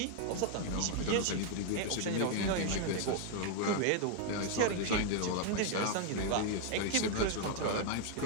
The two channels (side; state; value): both; different; correlation 0.00